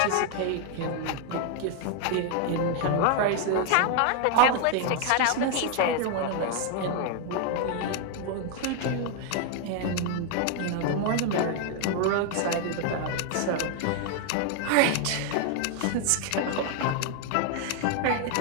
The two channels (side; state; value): both; different; correlation 0.01